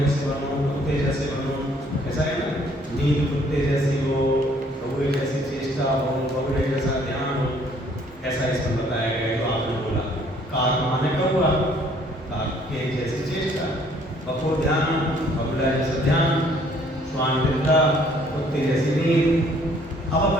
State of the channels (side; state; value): both; normal; correlation 0.61